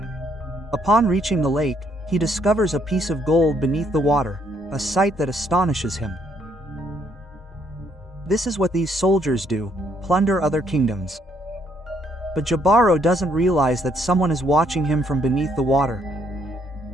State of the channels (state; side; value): normal; both; correlation 0.70